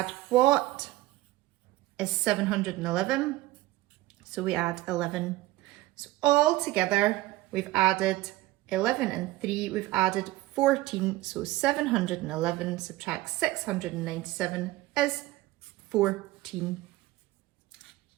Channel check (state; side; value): quieter; left; 17.6 dB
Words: what is 711? So we add 11. So all together, we've added 11 and 3, we've added 14. So 711 subtract 697 is 14.